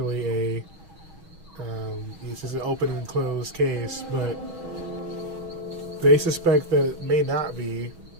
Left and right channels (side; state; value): left; late; 6.2 ms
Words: a it's just an open and closed case, but they suspect that it may not be.